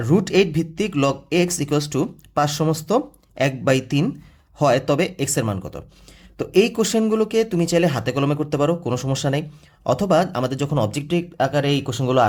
√8 ভিত্তিক লগ এক্স ইকুয়ালস টু 5 সমস্ত 1/3 হয়, তবে এক্সের মান কত? তো এই কোশ্চেনগুলোকে তুমি চাইলে হাতে কলমে করতে পারো, কোনো সমস্যা নেই। অথবা আমাদের যখন অবজেক্টিভ আকারে এই কোশ্চেনগুলো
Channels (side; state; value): both; identical; correlation 1.00